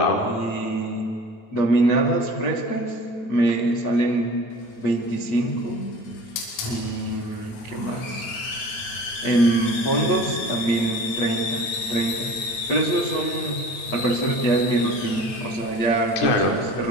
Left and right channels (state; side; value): late; right; 9.1 ms